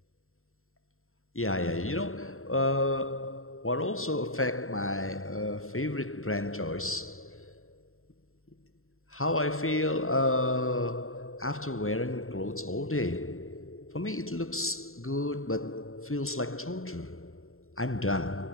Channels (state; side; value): late; right; 0.61 ms